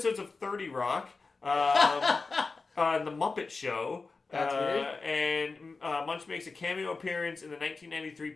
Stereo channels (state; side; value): quieter; right; 4.1 dB